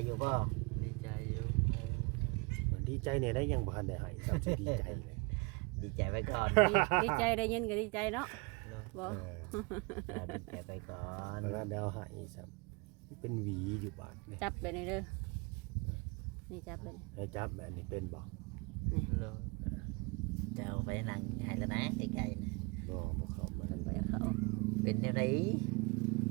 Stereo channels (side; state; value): left; quieter; 28.8 dB